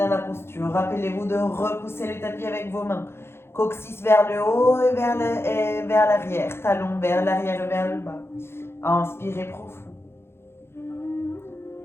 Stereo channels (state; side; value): late; right; 0.12 ms